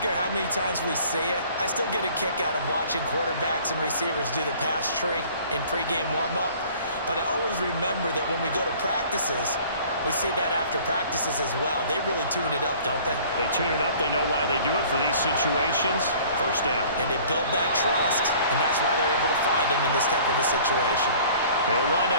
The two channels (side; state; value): both; inverted; correlation -0.50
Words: how many times we say it. I still get a kick out of watching quarterbacks and receivers do the pass tree in pregame warm-up. But I always remember that when we go to practices, we see that after practices as well. They really tune it up, don't they? They tune it up. They know why they do it for these situations. 1st down. And they build that trust, and that's why they're able to find him in this type of a situation. They'll wind